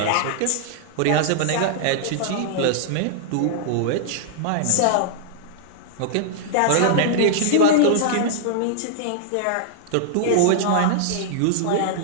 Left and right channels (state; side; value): different; both; correlation -0.01